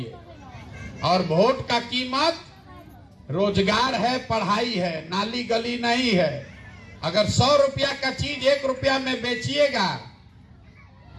और वोट का कीमत रोजगार है, पढ़ाई है, नाली गली नहीं है। अगर 100 रुपया का चीज 1 रुपया में बेचिएगा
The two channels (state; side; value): identical; both; correlation 1.00